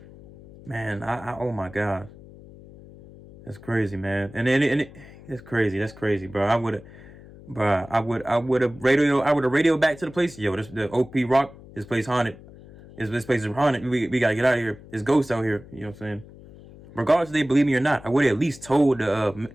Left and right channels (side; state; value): left; noise; hum, 20 dB below the sound